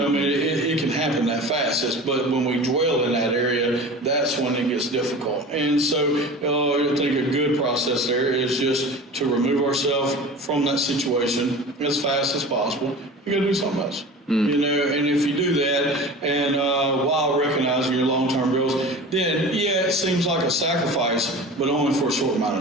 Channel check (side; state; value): both; normal; correlation 0.36